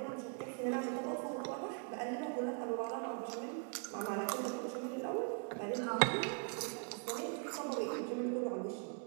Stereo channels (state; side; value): quieter; left; 38.3 dB